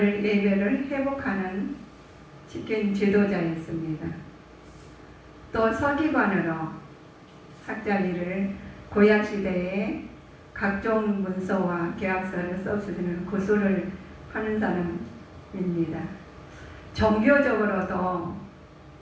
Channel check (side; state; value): both; identical; correlation 1.00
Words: 회복하는 지킨 지도자였습니다. 또 서기관으로 학자 일을 구약 시대에 각종 문서와 계약서를 써주는 구술을 하는 사람입니다. 종교적으로도